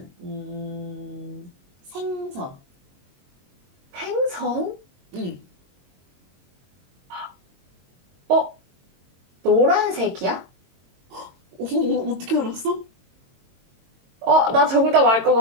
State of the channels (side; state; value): left; late; 22 ms